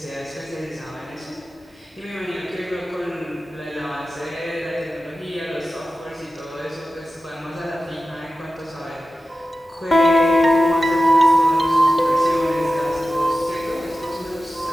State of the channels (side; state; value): both; normal; correlation 0.94